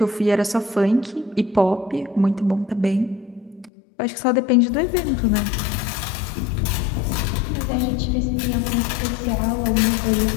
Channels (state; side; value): drops out; right; at 3.7 s